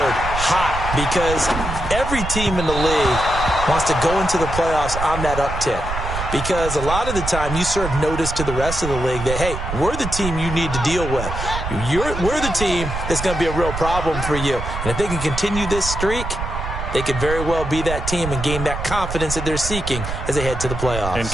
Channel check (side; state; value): right; noise; rumble, 6 dB below the sound